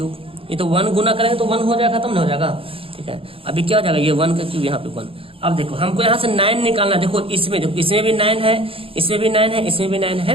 ये तो 1 गुना करेंगे तो 1 हो जाएगा, खत्म नहीं हो जाएगा, ठीक है। अभी क्या हो जाएगा, ये 1 का क्यूब यहाँ पे 1। अब देखो हमको यहाँ से 9 निकालना, देखो इसमें भी 9 है, इसमें भी 9 है, इसमें भी 9 है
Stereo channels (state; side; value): late; left; 0.27 ms